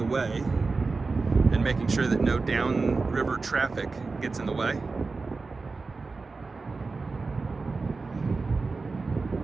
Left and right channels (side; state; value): left; quieter; 4.0 dB